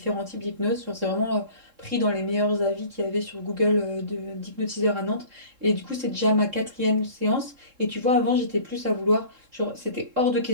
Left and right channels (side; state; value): left; late; 3.7 ms